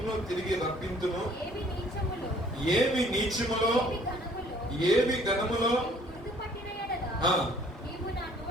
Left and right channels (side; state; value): both; normal; correlation 0.58